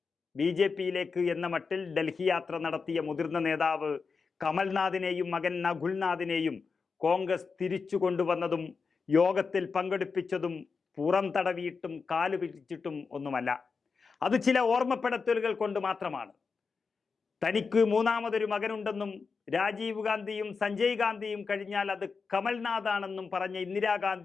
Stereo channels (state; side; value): quieter; right; 5.0 dB